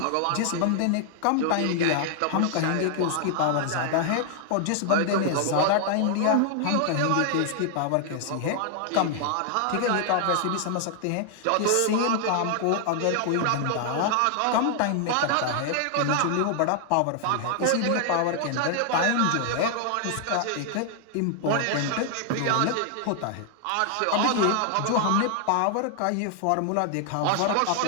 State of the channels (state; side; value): different; both; correlation 0.00